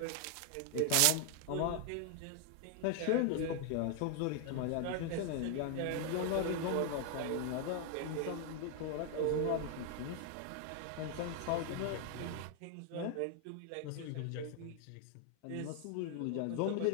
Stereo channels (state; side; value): different; both; correlation 0.00